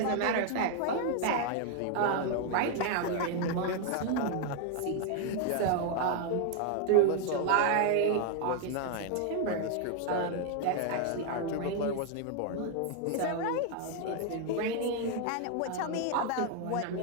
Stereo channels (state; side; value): different; both; correlation 0.00